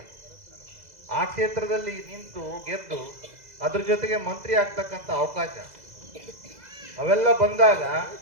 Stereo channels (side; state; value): left; late; 2.0 ms